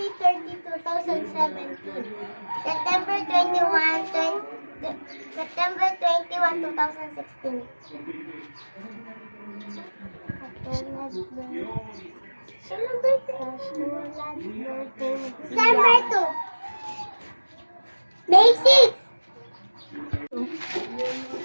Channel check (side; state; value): both; inverted; correlation -1.00